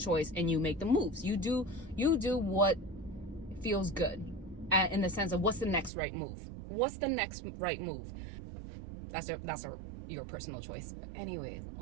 and you make the moves. You do what feels good, in the sense of, what's the next right move? What's the next right move? That's a your personal choice. But anyways,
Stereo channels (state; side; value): drops out; left; at 5.9 s